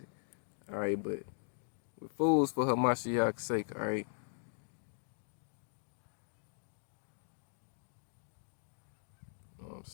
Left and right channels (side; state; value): right; silent; digital silence